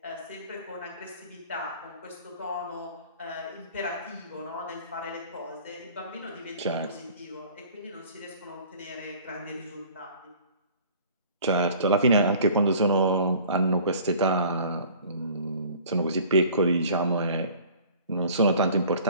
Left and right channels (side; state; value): both; inverted; correlation -0.49